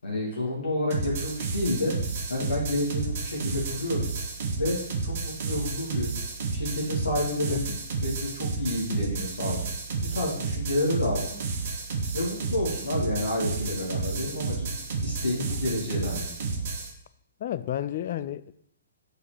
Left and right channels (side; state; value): both; inverted; correlation -0.58